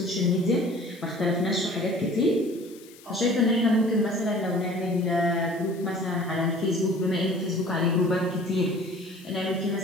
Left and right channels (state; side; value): noise; left; hiss, 23 dB below the sound